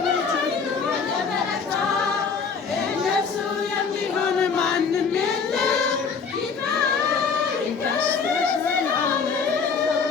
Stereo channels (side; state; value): right; quieter; 5.5 dB